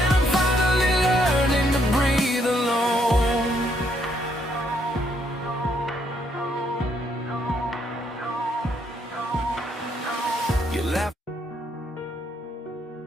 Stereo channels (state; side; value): normal; both; correlation 0.72